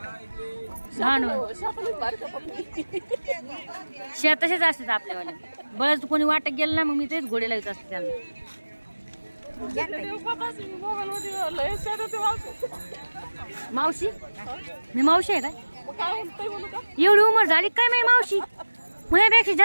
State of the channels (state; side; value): inverted; both; correlation -1.00